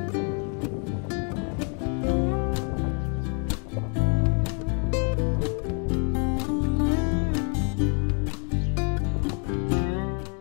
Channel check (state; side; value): quieter; right; 38.3 dB